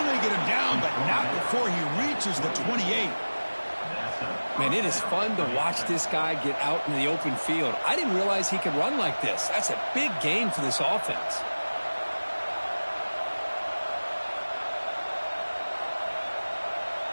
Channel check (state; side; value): inverted; both; correlation -1.00